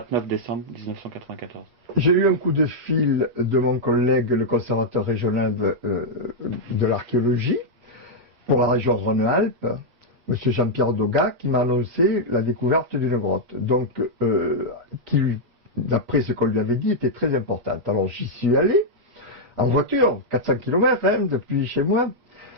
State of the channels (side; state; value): left; late; 8.4 ms